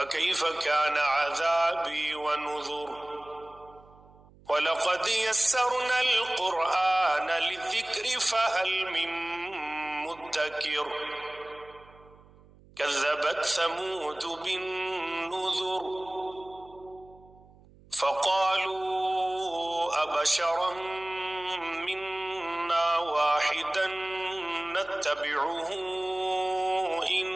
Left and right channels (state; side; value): noise; right; hum, 25 dB below the sound